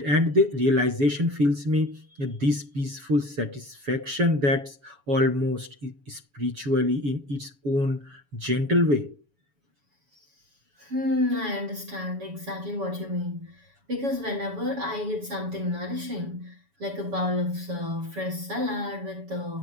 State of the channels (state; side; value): late; left; 7.1 ms